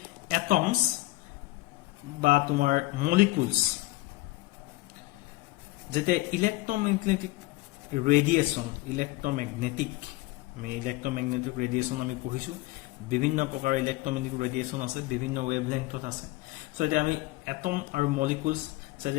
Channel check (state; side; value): quieter; right; 19.7 dB